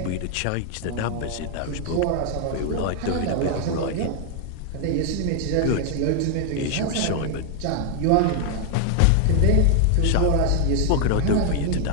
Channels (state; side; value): different; both; correlation 0.00